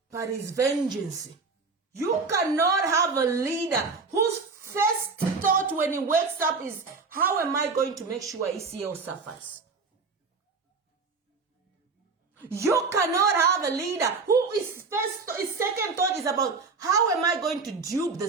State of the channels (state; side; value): quieter; left; 4.5 dB